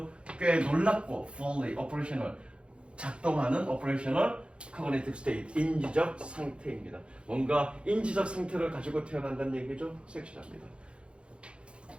꽤 놀랍고 fully operational 작동하는 operational cognitive state 인지적 상태입니다. 뭔가 인지적 상태를 가지고 태어난다는 얘기죠. 섹시합니다.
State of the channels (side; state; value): left; late; 0.057 ms